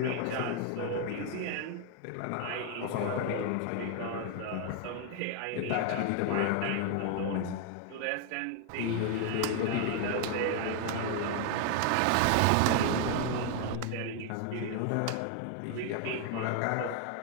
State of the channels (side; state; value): both; different; correlation 0.00